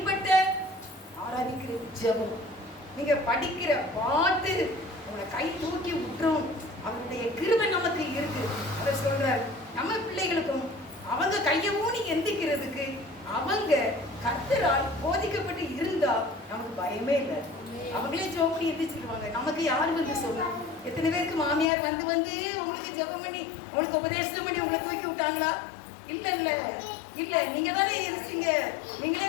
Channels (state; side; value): drops out; right; at 21.7 s